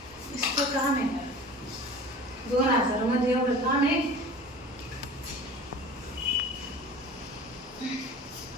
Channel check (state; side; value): normal; both; correlation 0.40